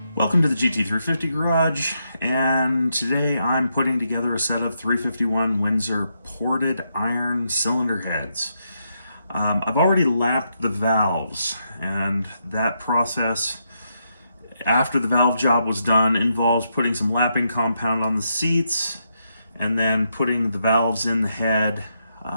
Welcome to the GT350 Garage, and today I'm putting together a set of 351 Windsor ported iron cylinder heads. I've already lapped the valves, and that process after the valve job was done involves putting some lapping compound on the seats and then putting the valves in the head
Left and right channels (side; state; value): both; inverted; correlation -0.80